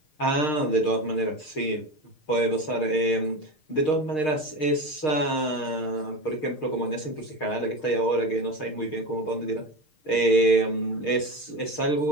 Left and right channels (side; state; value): right; late; 6.5 ms